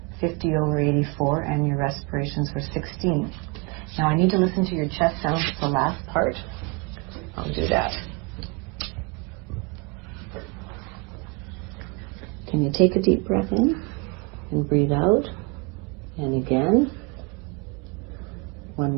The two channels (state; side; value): quieter; left; 29.0 dB